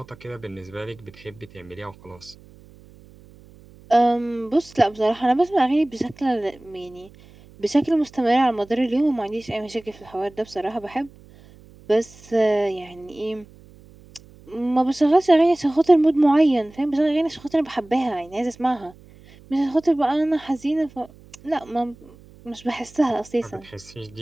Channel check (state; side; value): noise; right; hum, 24 dB below the sound